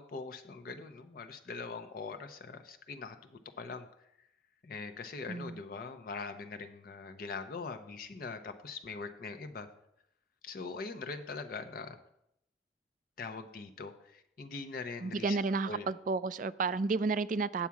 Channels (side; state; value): both; normal; correlation 0.34